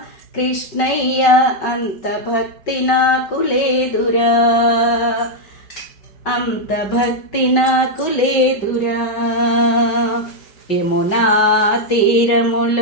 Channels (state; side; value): late; right; 5.3 ms